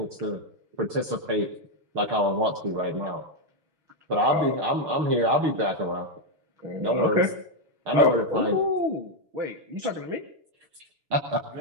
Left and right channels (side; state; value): left; late; 6.6 ms